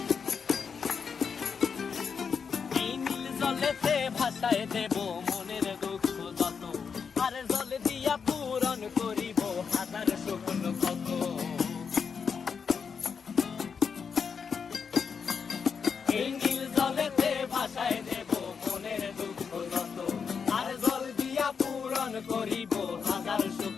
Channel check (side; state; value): right; quieter; 6.1 dB